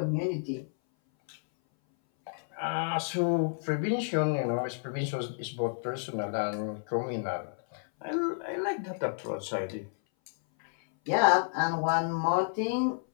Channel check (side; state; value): right; silent; 57 dB below the other